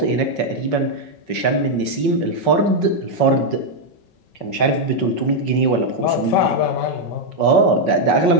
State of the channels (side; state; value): right; late; 5.3 ms